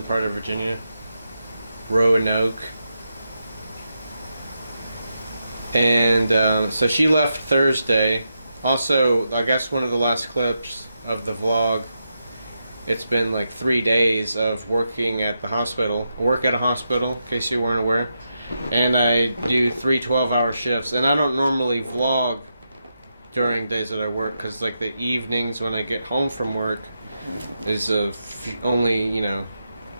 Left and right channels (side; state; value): both; inverted; correlation -0.85